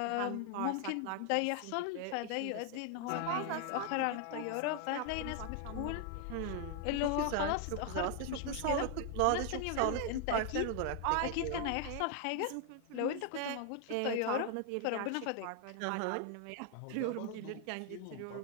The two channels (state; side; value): different; both; correlation 0.00